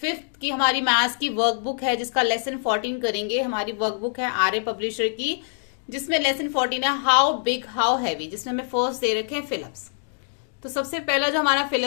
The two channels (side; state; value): right; silent; digital silence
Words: 5th की हमारी मैथ्स की वर्कबुक है, जिसका लेसन 14 करेंगे। हमारी वर्कबुक है आर्य पब्लिशर की, जिसमें लेसन 14 है हाउ बिग हाउ हैवी, जिसमें हमें फर्स्ट दे रखे हैं फिलअप्स। तो सबसे पहला जो हमारा